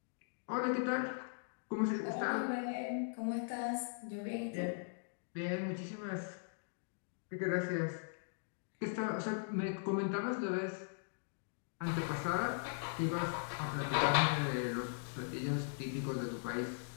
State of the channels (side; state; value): right; silent; digital silence